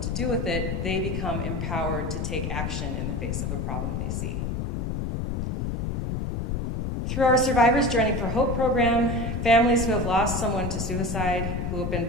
to do with it, they become empowered to take action in the face of a problem they see. Through our Survivors Journey for Hope program, families who have lost someone to suicide, who have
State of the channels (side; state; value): left; noise; rumble, 1 dB below the sound